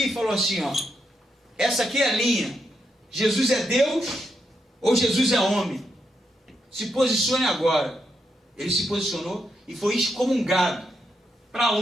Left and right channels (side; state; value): both; normal; correlation 0.82